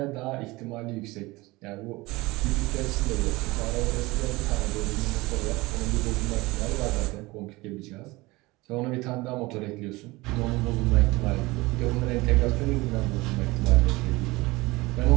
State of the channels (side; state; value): left; quieter; 21.7 dB